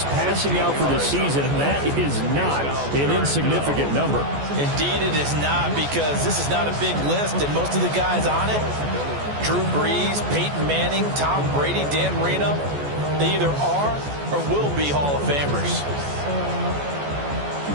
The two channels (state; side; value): late; left; 14 ms